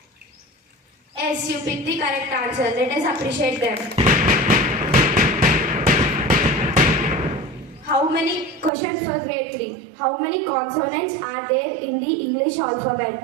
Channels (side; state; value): left; drops out; at 8.7 s